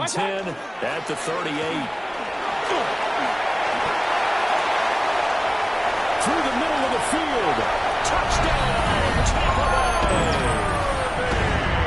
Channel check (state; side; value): identical; both; correlation 1.00